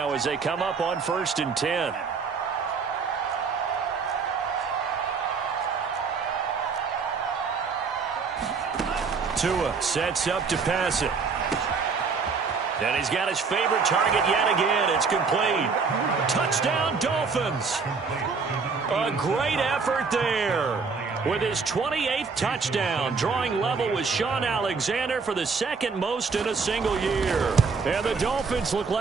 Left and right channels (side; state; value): left; quieter; 5.0 dB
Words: as they come up on 1st and 10. Tua sets up to pass it. And he's got his favorite target yet again. It's complete. Touchdown, Dolphins. A great effort there. With his 28th touchdown, drawing level with Sean Alexander for the 2nd most in a single year. And the Dolphins look